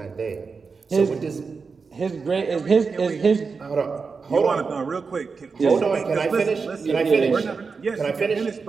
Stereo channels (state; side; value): quieter; left; 4.9 dB